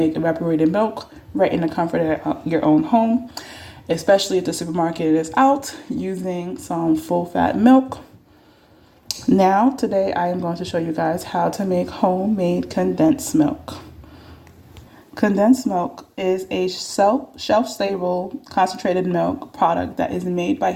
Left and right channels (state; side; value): identical; both; correlation 1.00